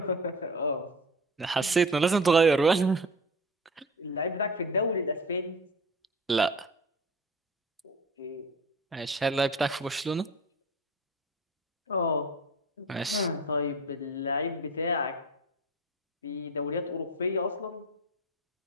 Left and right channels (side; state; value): both; normal; correlation 0.35